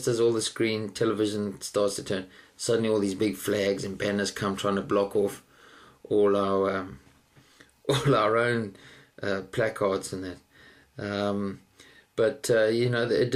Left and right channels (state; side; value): identical; both; correlation 1.00